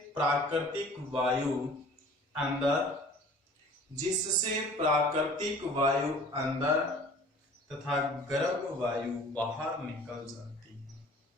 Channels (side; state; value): both; normal; correlation 0.47